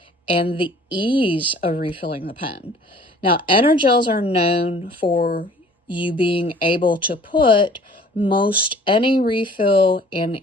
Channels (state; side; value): normal; both; correlation 0.52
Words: and the ease of refilling the pen. Now, Energels are known for you being able to put most any refill in